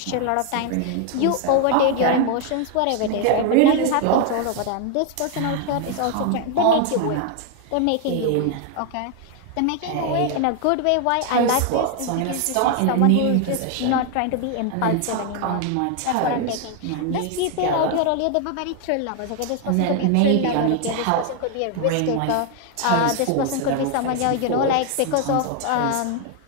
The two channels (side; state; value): both; different; correlation 0.00